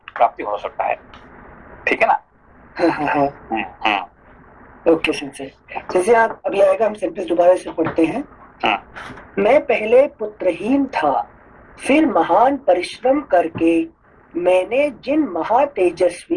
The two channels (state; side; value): identical; both; correlation 1.00